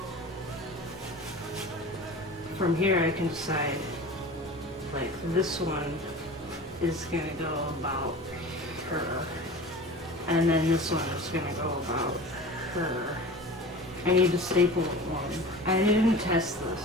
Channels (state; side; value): normal; both; correlation 0.37